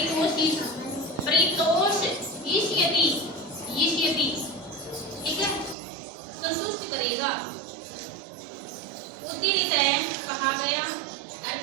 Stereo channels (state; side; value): drops out; left; at 5.8 s